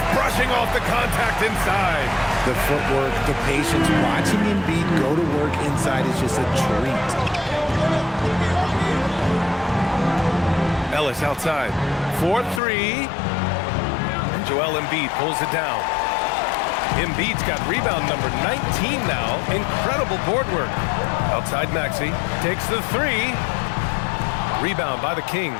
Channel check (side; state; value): right; drops out; at 12.6 s